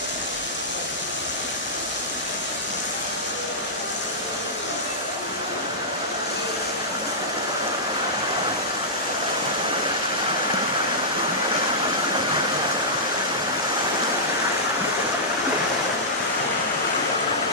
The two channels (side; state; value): both; normal; correlation -0.13